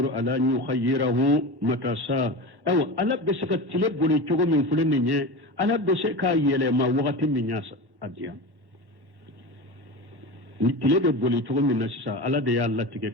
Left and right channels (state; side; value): late; left; 1.1 ms